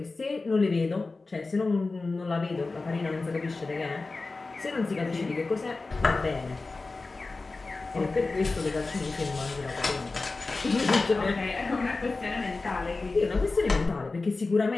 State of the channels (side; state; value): right; quieter; 3.6 dB